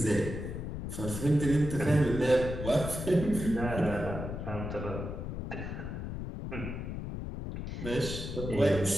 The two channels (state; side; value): noise; left; rumble, 6 dB below the sound